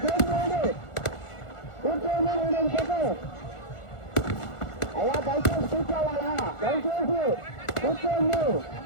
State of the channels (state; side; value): late; right; 1.4 ms